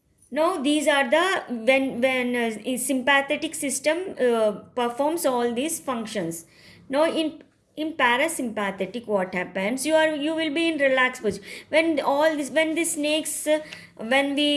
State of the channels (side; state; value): both; identical; correlation 1.00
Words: Now these are the when sympathetic system performs all these functions. Now in parasympathetic, what happens, you will be in relaxed position. When all this, when the snakes when